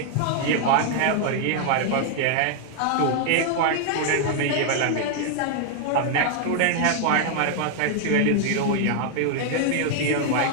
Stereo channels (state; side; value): different; both; correlation 0.00